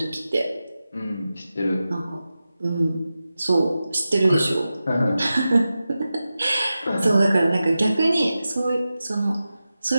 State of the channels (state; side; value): inverted; both; correlation -0.93